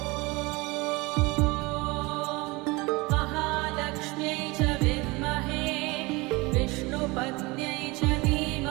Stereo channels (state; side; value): quieter; left; 24.1 dB